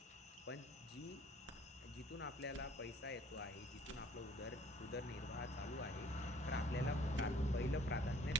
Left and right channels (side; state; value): both; normal; correlation 0.56